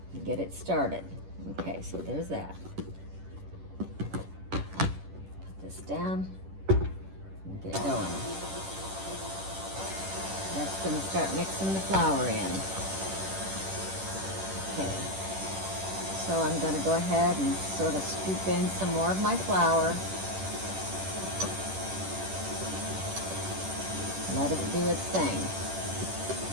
and get it started. Okay, so there's that. Put this down and get it going. That's going to start mixing the flour in. Okay, so I'm going to go ahead and sort of scoop in some more of my flour. Let it do its thing.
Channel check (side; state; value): left; late; 10 ms